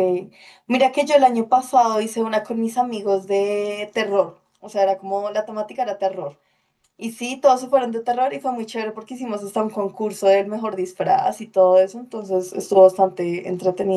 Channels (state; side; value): identical; both; correlation 1.00